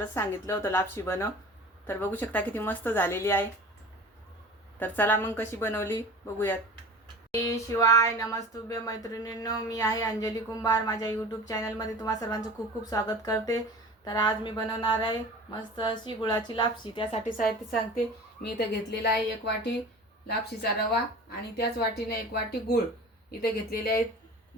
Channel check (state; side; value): normal; both; correlation 0.38